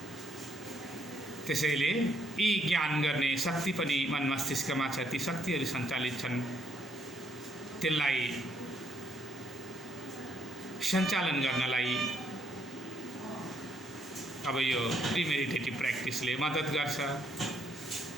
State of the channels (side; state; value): both; normal; correlation 0.71